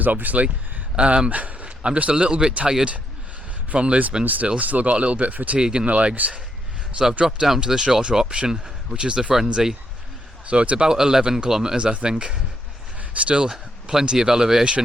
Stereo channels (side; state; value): both; normal; correlation 0.77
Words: obviously. I'm just a little bit tired from Lisbon still got a little bit of fatigue in the legs. So I've dropped down to the shorter option, which is the Frenzy. So it's about 11 kilometres I think. Still plenty of